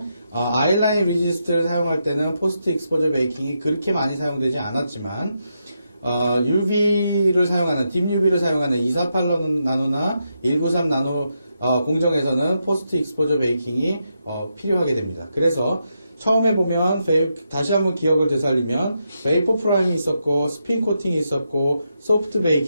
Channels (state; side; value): inverted; both; correlation -0.83